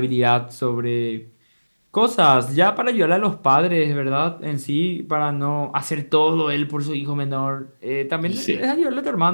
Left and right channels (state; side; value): inverted; both; correlation -1.00